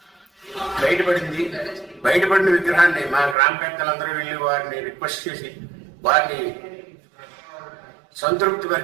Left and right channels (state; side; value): drops out; left; at 3.4 s